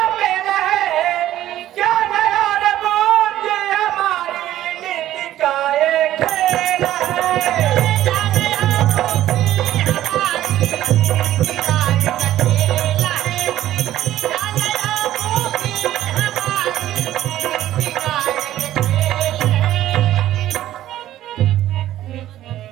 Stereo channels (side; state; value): left; quieter; 13.3 dB